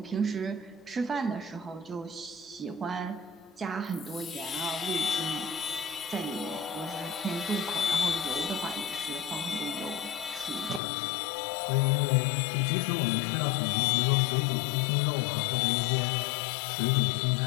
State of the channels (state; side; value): drops out; right; at 10.8 s